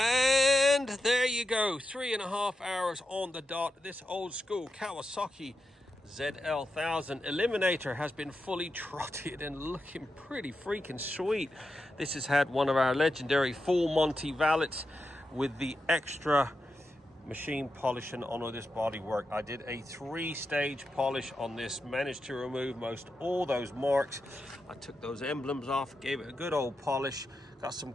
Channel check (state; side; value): normal; both; correlation 0.88